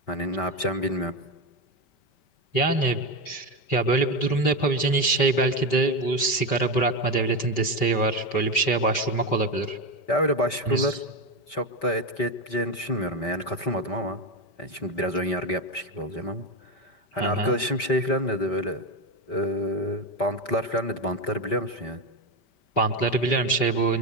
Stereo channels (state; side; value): late; right; 5.2 ms